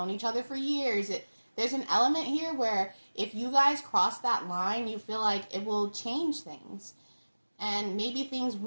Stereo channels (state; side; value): inverted; both; correlation -1.00